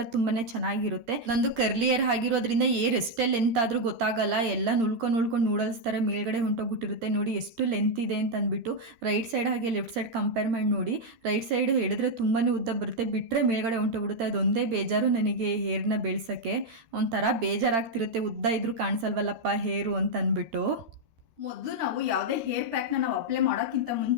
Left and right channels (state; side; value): late; left; 13 ms